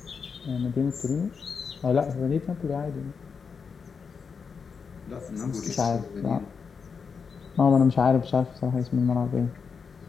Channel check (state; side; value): quieter; right; 5.8 dB